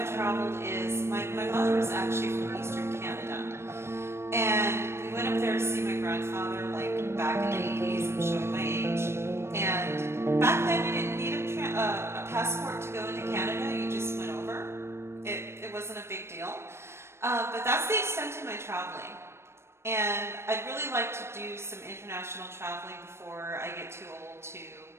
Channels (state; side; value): late; left; 0.12 ms